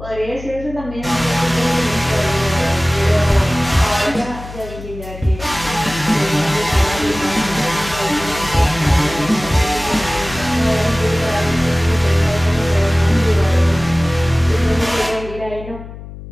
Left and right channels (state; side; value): noise; left; hum, 13 dB below the sound